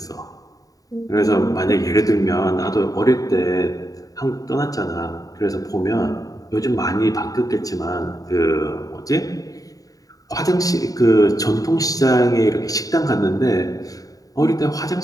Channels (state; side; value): late; right; 0.17 ms